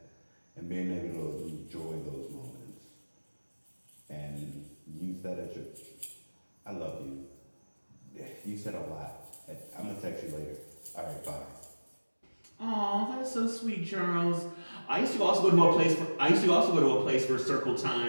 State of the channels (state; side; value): inverted; both; correlation -1.00